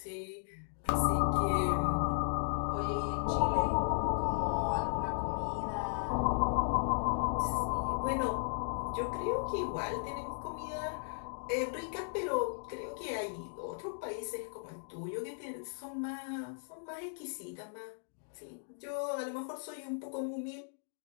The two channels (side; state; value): right; silent; digital silence